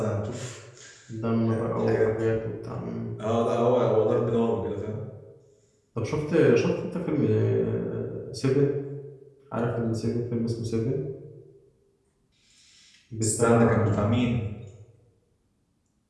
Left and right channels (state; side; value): identical; both; correlation 1.00